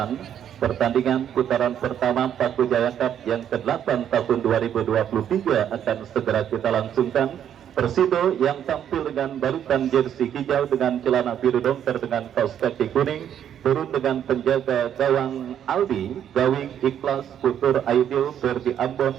pertandingan putaran pertama Paku Jaya Cup yang ke-8 tahun 2023 akan segera kita langsungkan. Persido yang tampil dengan balutan jersey hijau dengan celana biru dongker dengan kaos kaki kuning, turun dengan penjaga gawang Aldi, Gawing, Ikhlas, Putur, Aidil, Ferdi Ambon,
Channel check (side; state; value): left; quieter; 9.6 dB